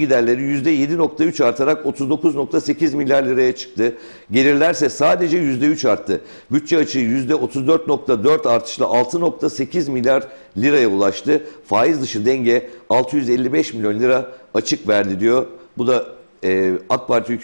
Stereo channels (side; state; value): both; inverted; correlation -1.00